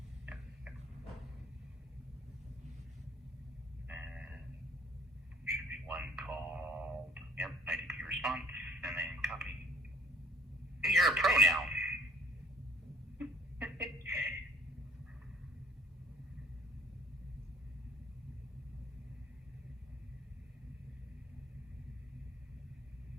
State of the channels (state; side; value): normal; both; correlation 0.57